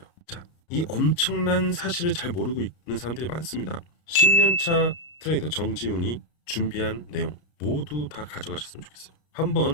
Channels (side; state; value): right; late; 33 ms